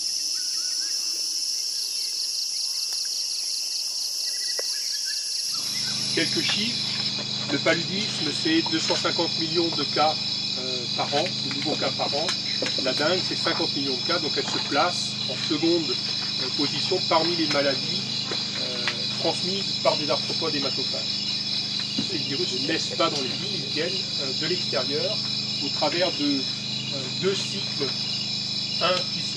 Quelques chiffres. Le paludisme, c'est 250 millions de cas par an, de nouveaux cas par an. La dengue, c'est 50 millions de cas, donc elle se place en seconde position parmi les maladies transmises par des arthropodes hématophages. Ces virus ne naissent pas dans les villes, ils viennent de l'extérieur au travers de deux cycles, un qui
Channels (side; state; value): both; identical; correlation 1.00